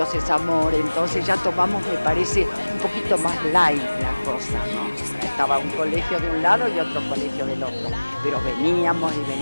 es amor, entonces ya tomamos, me parece, un poquito más light la cosa, ¿no? Estaba un colegio de un lado y otro colegio del otro, pero veníamos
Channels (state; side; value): inverted; both; correlation -1.00